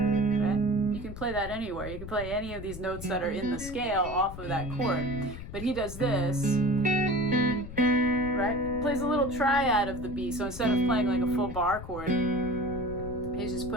You can play that anywhere. You can play any of these notes that are in the scale off of that chord. But he does this, right? Plays a little triad of the B. So instead of playing like a full bar chord, he's just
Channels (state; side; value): noise; left; rumble, 11 dB below the sound